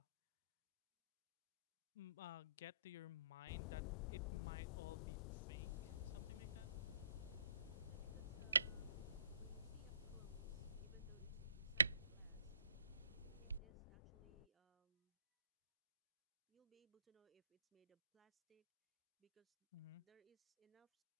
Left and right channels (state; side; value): inverted; both; correlation -0.66